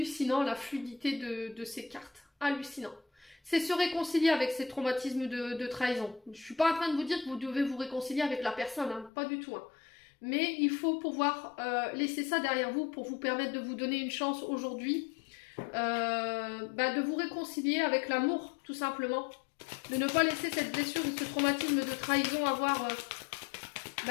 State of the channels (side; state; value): right; drops out; at 9.1 s